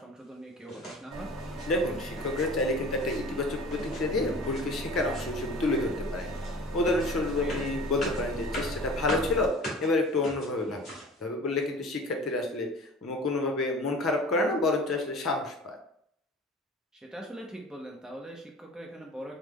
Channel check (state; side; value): normal; both; correlation 0.42